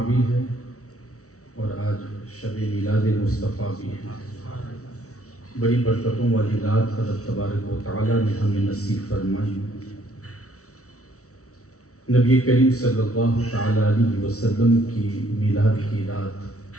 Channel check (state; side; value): late; right; 0.65 ms